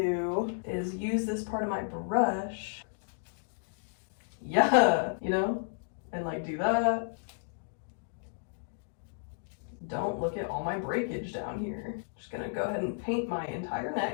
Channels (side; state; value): right; silent; digital silence